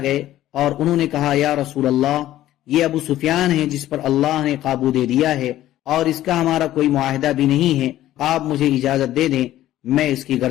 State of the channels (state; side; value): quieter; right; 13.9 dB